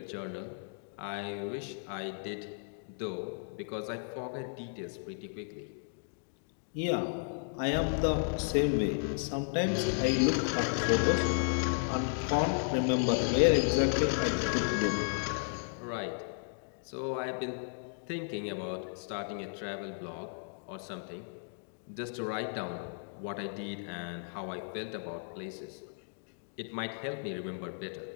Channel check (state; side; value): silent; right; digital silence